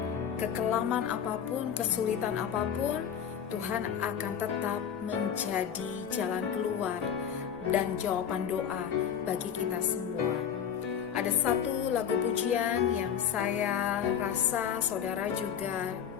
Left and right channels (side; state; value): right; quieter; 8.4 dB